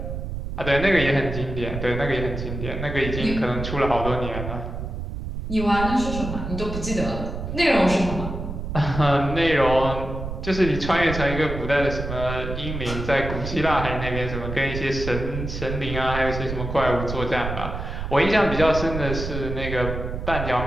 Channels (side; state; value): right; noise; rumble, 6 dB below the sound